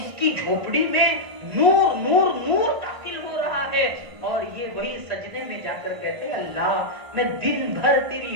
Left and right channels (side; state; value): left; late; 1.5 ms